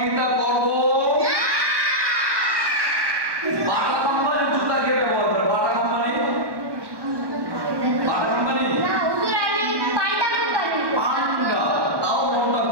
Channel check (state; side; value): late; left; 1.2 ms